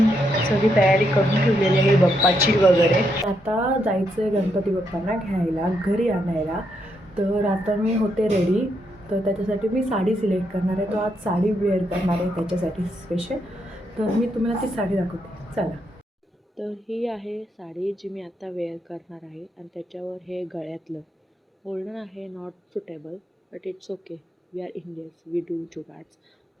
सगळी तयारी करून ठेवलेली आहे बाप्पाची वगैरे. आता जायचं आहे गणपती बाप्पांना घ्यायला, घरी आणायला. तर आता मी होते रेडी. तर त्याच्यासाठी मी साडी सिलेक्ट करणार आहे. तो आज साडी वेअर करणार आहे त्याच्यासाठी स्पेशल. तर मी तुम्हाला ती साडी दाखवते, चला. तर ही आहे साडी जी मी आता वेअर करणार आहे. आणि त्याच्यावर हे गळ्यातलं बोलणं आहे not suitable, but it's okay, we are Indians, we do jugaads.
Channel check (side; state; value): both; normal; correlation 0.78